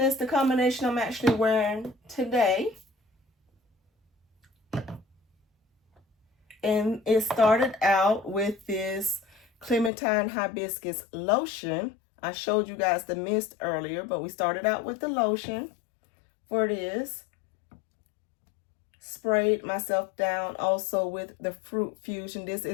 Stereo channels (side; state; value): right; drops out; at 9.9 s